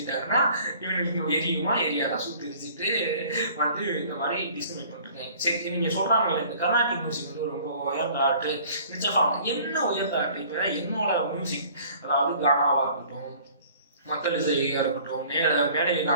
இவங்களுக்கு எரியுமா எரியாதா சுத்திரிச்சுட்டு வந்து இந்த மாதிரி டிஸ்கிரிமினேட் பண்ணிருக்கேன். சரி, நீங்க சொல்றாங்கல்ல இந்த கர்நாடிக் மியூசிக் வந்து ரொம்ப உயர்ந்த ஆர்ட், நிச்சயம் என்ன உயர்ந்த ஆர்ட்? இப்ப என்னோட மியூசிக், அதாவது கானாவா இருக்கட்டும், மக்கள் இசையா இருக்கட்டும், மேடை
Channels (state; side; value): inverted; both; correlation -0.51